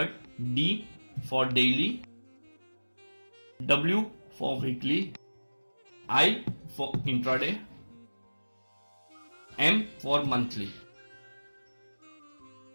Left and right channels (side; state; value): both; inverted; correlation -1.00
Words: D for daily, W for weekly, I for intraday, M for monthly.